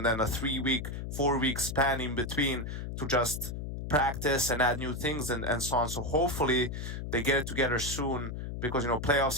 then a 3-week, 4-week span in between to just practice and add new things and so on. So hopefully they get it together soon because, you know,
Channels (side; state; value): left; noise; hum, 6 dB below the sound